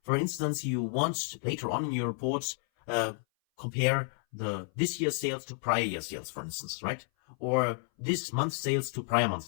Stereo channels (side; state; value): right; silent; 57 dB below the other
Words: for instance, you want later on in your report, compare this year's sales to prior year sales, for instance, right? Or this month's sales to prior